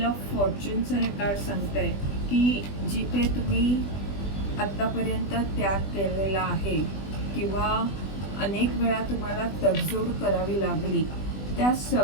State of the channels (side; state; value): right; late; 20 ms